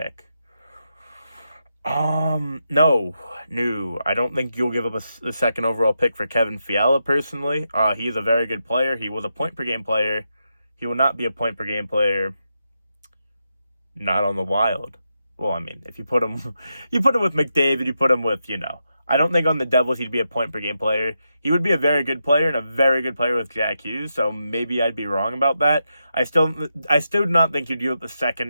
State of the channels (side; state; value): both; inverted; correlation -0.85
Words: No, I don't think you'll give up the 2nd overall pick for Kevin Fiala, personally. He is a very good player. He was a point-per-game player. He will not be a point-per-game player not on the Wild. Well, I mean, if you put him with McDavid, you put him with, I don't think on the Devils he'd be a point-per-game player. He would be a very good player and a very good player with Jack Hughes, so maybe I'd be wrong about that. I still do not think you'd give up the